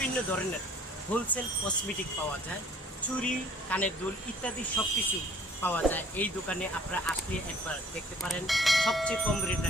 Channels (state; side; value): normal; both; correlation 0.55